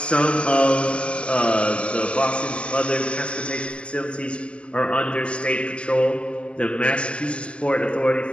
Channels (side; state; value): right; late; 0.055 ms